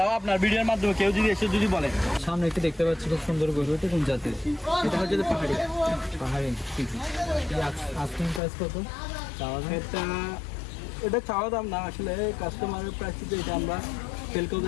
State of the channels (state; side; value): drops out; right; at 8.4 s